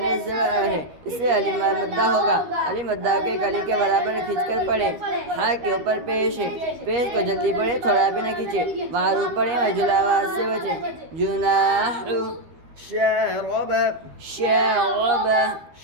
زبر ہے اس سے الف مدہ ہوگا الف مدہ کے ایک الف کے برابر کھینچ کر پڑھے ہا کے اوپر پیش ہے پیش کو جلدی پڑھے تھوڑا بھی نہ کھینچے معروف پڑھے مجہول آواز سے بچے جناح شارب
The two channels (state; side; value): late; left; 13 ms